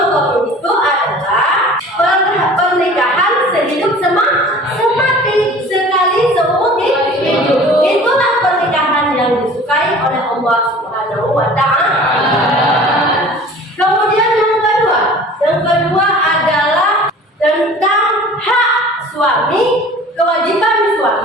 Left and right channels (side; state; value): both; normal; correlation 0.44